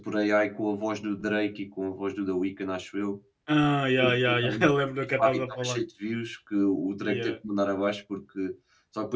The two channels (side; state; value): both; identical; correlation 1.00